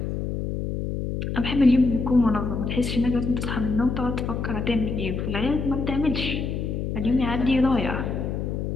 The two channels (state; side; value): noise; left; hum, 3 dB below the sound